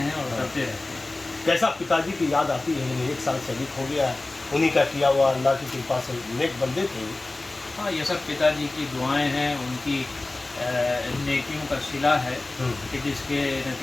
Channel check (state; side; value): quieter; right; 3.0 dB